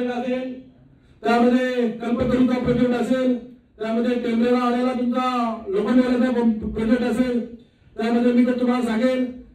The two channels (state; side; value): identical; both; correlation 1.00